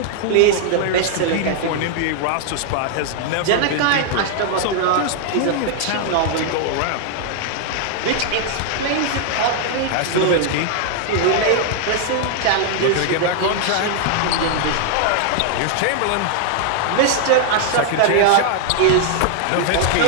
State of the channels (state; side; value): different; both; correlation 0.00